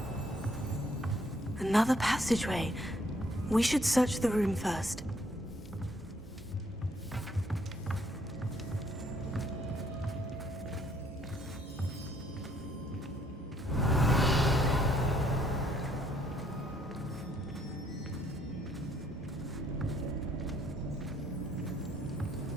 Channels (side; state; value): both; normal; correlation 0.66